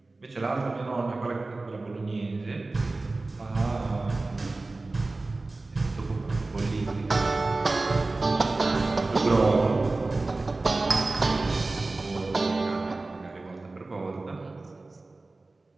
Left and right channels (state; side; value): quieter; left; 3.3 dB